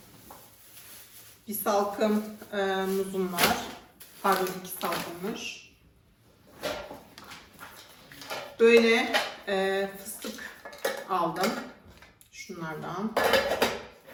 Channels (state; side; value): identical; both; correlation 1.00